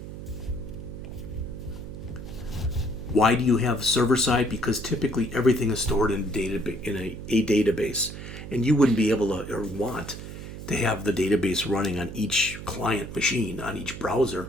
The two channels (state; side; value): noise; right; hum, 10 dB below the sound